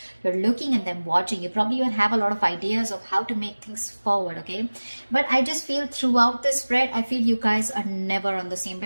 looking at them, watching. You probably even have a lot of ideas of how to make things forward. Okay, but I just feel throughout this spread, I feel you guys are never on the same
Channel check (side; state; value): both; inverted; correlation -1.00